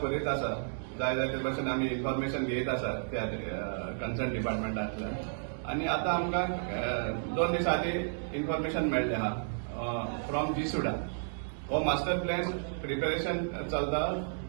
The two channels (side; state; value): left; silent; digital silence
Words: करीत आसा। जाय ते भशेन आमी इन्फॉर्मेशन घेयत आसा त्या कन्सर्न डिपार्टमेंटांतल्यान। आनी आतां आमकां 2 दीस आदीं इन्फॉर्मेशन मेळ्ळें आहा फ्रॉम जीसुडा। हो मास्टर प्लॅन प्रिपेरेशन चलता